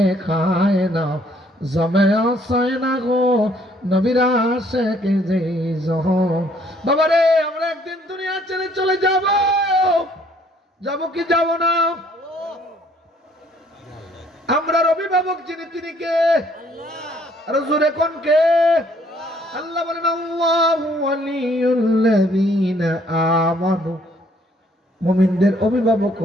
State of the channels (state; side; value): normal; both; correlation 0.63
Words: খায় না, জমে আসয় না গো নবীর আশিক যে জহন। বাবারে, আমরা একদিন দুনিয়া ছেড়ে চলে যাব, যাব কি যাব না? আমরা অভিভাবক যিনি, তিনি কে? আর জোরে কোন কে? আল্লাহ বলেন আল্লাহু ওয়ালিউল্লাযীনা আমানু। মুমিনদের অভিভাবক